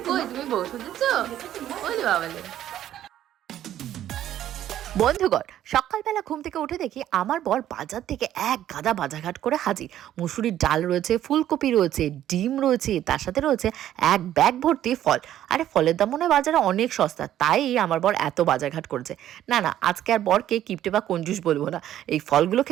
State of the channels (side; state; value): left; quieter; 11.9 dB